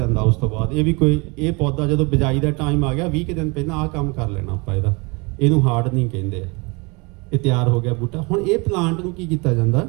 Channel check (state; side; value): quieter; left; 28.5 dB